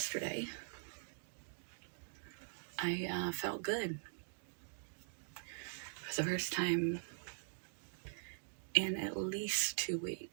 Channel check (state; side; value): silent; left; digital silence